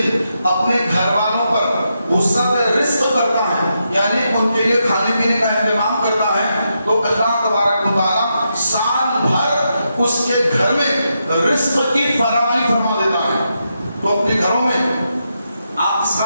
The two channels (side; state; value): both; inverted; correlation -0.84